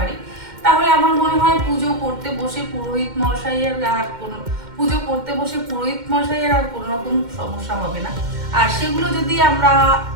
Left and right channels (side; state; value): left; late; 2.1 ms